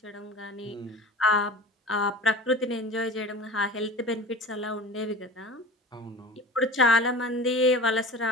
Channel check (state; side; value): normal; both; correlation 0.36